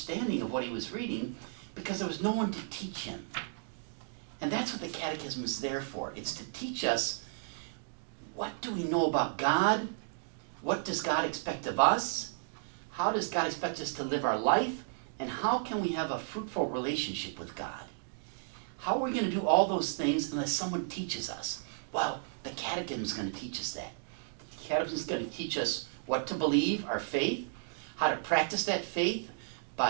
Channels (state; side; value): silent; left; digital silence